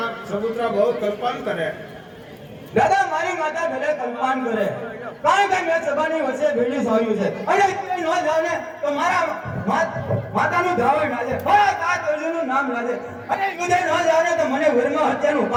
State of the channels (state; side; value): identical; both; correlation 1.00